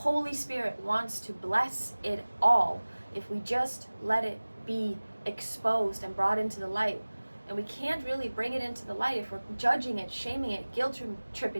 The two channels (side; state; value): both; inverted; correlation -1.00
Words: Spirit wants to bless it all if we just let it be exposed and brought into the light. And we can't really bring it into the light if we're judging it, shaming it, guilt